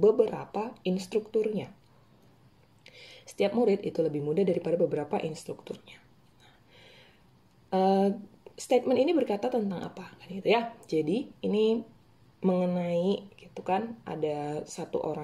instrukturnya. Setiap murid itu lebih muda daripada beberapa instrukturnya. Statement ini berkata tentang apa, kan gitu ya. Jadi ini mengenai, gitu kan, ada satu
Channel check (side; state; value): both; identical; correlation 1.00